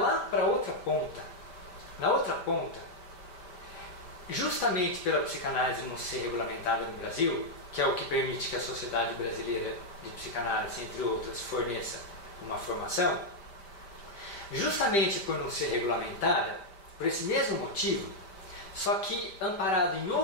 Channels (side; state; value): right; late; 5.1 ms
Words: para a outra ponta. Na outra ponta, justamente pela psicanálise não ser regulamentada no Brasil, que é o que permite que a Sociedade Brasileira de Psicanálise, entre outras, forneça uma formação, justamente por não ser regulamentada, por esse mesmo motivo, só que amparado em